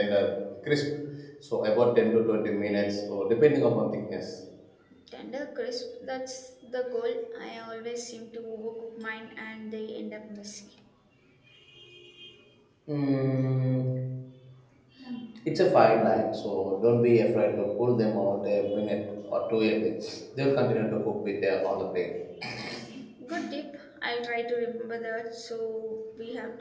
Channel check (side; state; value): both; identical; correlation 1.00